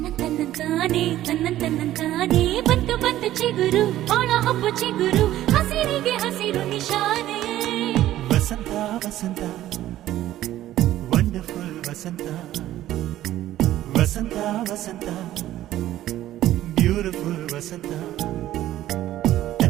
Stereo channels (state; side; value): quieter; left; 13.8 dB